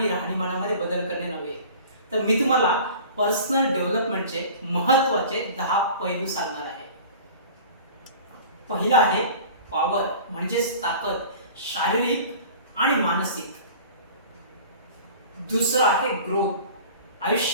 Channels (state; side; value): inverted; both; correlation -0.41